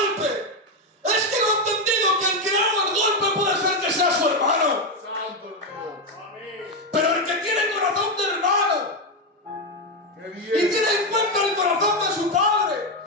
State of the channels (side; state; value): both; normal; correlation 0.08